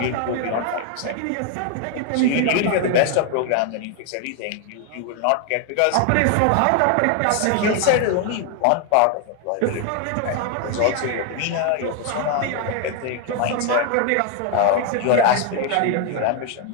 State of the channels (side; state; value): both; different; correlation 0.01